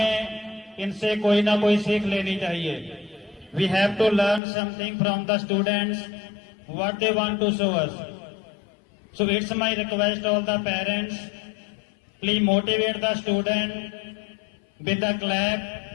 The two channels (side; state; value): right; drops out; at 4.4 s